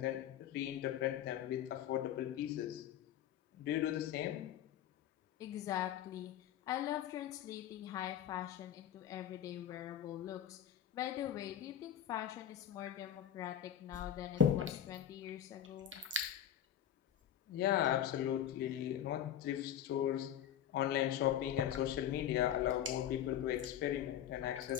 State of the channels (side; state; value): right; quieter; 10.3 dB